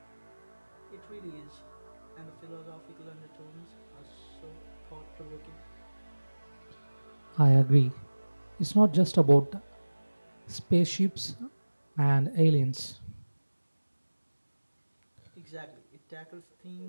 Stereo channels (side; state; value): both; inverted; correlation -1.00